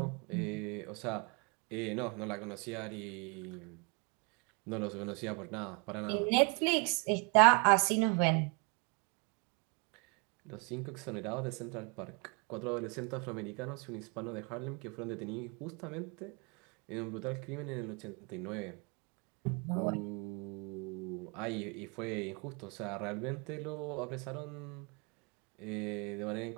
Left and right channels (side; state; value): left; quieter; 33.1 dB